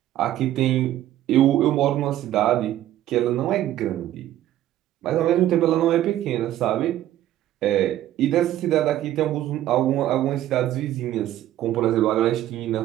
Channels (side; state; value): left; quieter; 13.1 dB